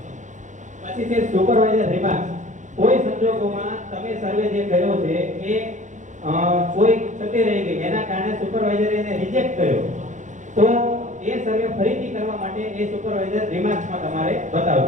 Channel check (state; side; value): late; left; 0.36 ms